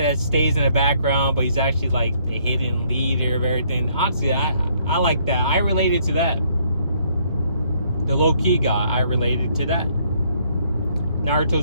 that stays in the background, but he's actually like the hidden leader of everything. Honestly, I like that. I related to that. The low-key guy, I related to that.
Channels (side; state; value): both; inverted; correlation -0.68